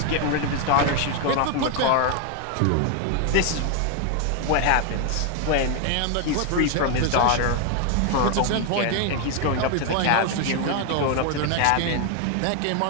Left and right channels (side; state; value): both; different; correlation 0.01